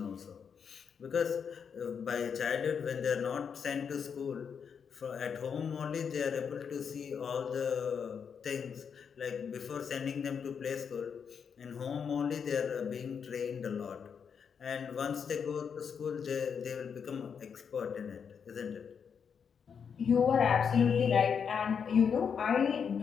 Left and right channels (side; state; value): right; quieter; 6.8 dB